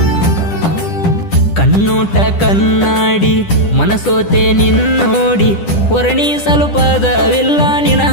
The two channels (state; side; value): late; right; 10 ms